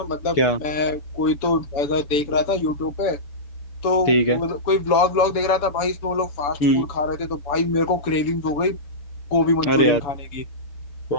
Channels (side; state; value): right; late; 7.0 ms